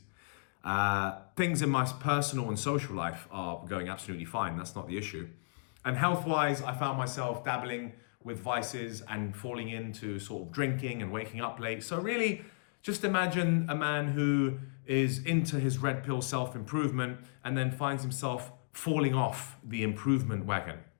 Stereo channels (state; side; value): silent; right; digital silence